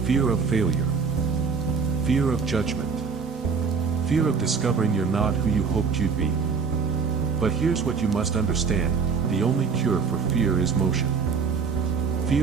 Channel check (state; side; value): quieter; left; 5.5 dB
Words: Fear of failure. Fear of judgment. Fear of discovering you're not who you hoped you'd be. But here's what you must understand, the only cure for fear is motion.